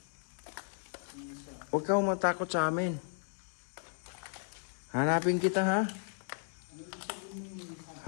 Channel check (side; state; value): right; silent; 54 dB below the other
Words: Huwag kang matakot sa amin. Hanapin kita ha.